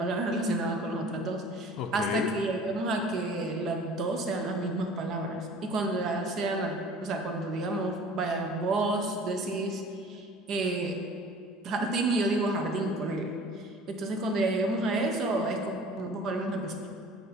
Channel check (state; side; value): normal; both; correlation 0.46